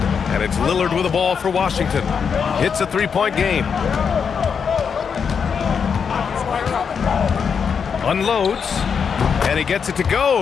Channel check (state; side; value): quieter; right; 6.5 dB